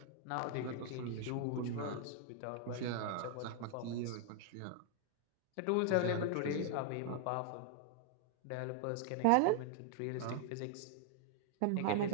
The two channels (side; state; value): both; different; correlation 0.00